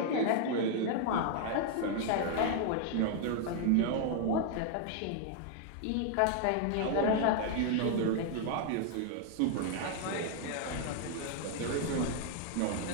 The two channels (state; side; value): different; both; correlation 0.00